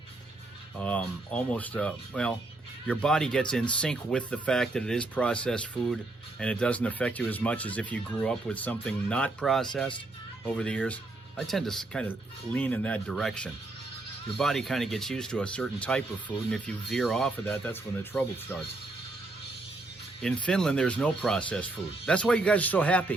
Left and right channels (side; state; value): left; quieter; 3.0 dB